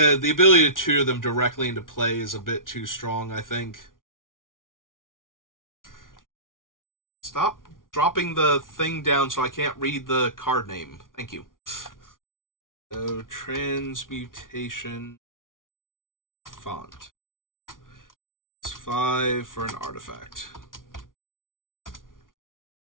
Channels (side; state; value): right; late; 0.89 ms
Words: the ability to tutor them directly into play is a bit too strong, I think. Stop dropping the thing down so I can't read the card name. Thank you. So, transmutation font. It's 5 for an artifact.